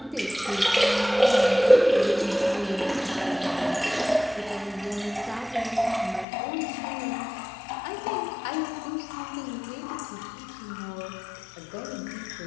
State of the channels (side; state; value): right; drops out; at 6.2 s